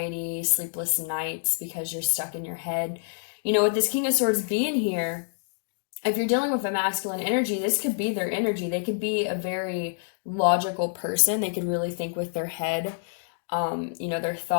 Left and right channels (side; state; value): right; silent; digital silence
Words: sleepless nights, because you're stuck in your head. With this King of Swords being here, if you're dealing with a masculine energy, this could be their energy. They could be a very logical person. They could really think with their head, their